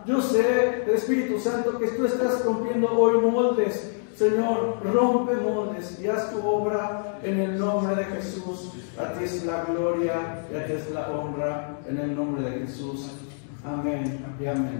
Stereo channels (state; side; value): silent; right; digital silence